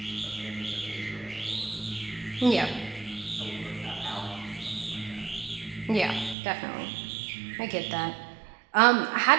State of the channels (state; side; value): drops out; left; at 6.4 s